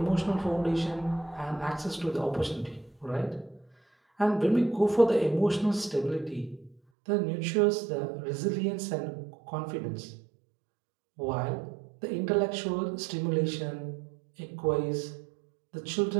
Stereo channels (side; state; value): left; drops out; at 6.8 s